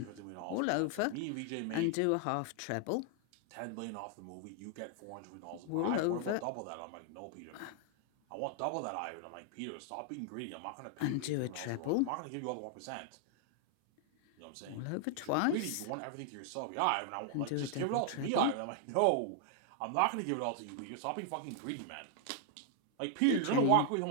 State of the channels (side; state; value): both; different; correlation 0.00